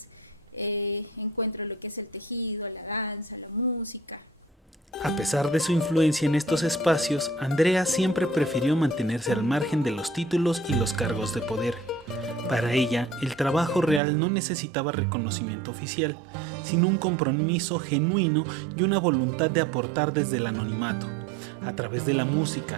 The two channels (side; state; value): left; drops out; at 14.0 s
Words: encuentro lo que es el tejido, la danza, la música. A pesar de su influencia en estos espacios, Andrea siempre prefirió mantenerse al margen de los títulos y los cargos de poder. Para ella, el trabajo real no necesitaba reconocimiento oficial, sino un compromiso genuino y una voluntad de aportar desde el anonimato. A través de la música,